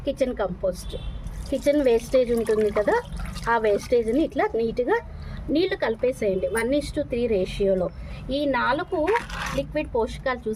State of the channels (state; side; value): identical; both; correlation 1.00